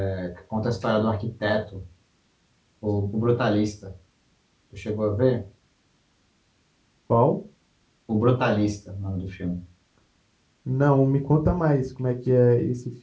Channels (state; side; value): identical; both; correlation 1.00